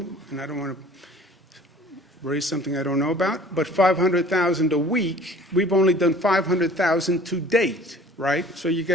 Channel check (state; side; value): normal; both; correlation 0.49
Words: and I don't want to raise something I don't know about. But 500,000 a week, we've only done 500,000 to date, right? So you